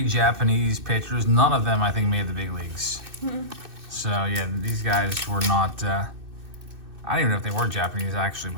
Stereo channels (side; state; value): left; late; 2.6 ms